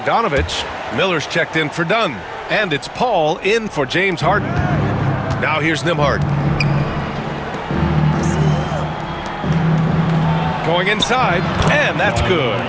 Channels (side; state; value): both; identical; correlation 1.00